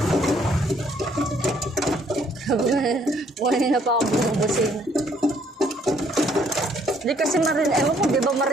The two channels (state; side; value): normal; both; correlation 0.65